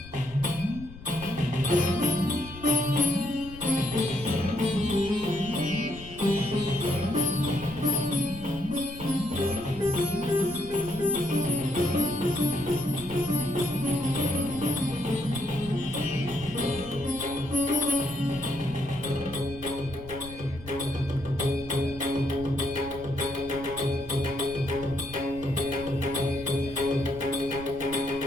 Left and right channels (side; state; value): left; noise; rumble, 16 dB below the sound